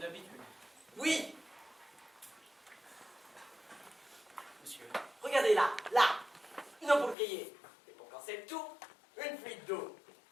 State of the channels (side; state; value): right; drops out; at 7.2 s